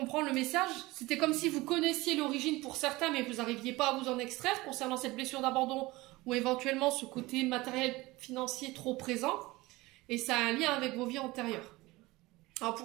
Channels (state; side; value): quieter; left; 20.7 dB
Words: le message. C'était comme si vous connaissiez l'origine pour certains, mais vous n'arriviez pas à vous en extraire concernant cette blessure d'abandon ou éventuellement ce côté matériel financier trop présent. Et ça a un lien avec vos vies antérieures. Alors